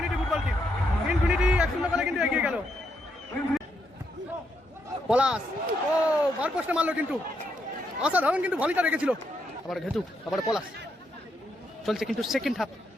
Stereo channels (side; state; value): both; normal; correlation 0.79